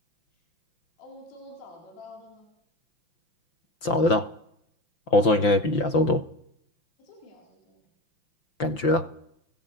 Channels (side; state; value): right; late; 5.8 ms